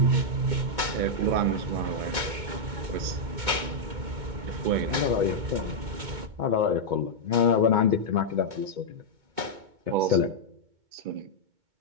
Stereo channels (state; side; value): late; left; 2.2 ms